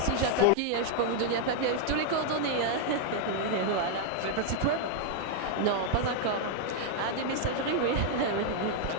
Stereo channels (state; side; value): different; both; correlation -0.01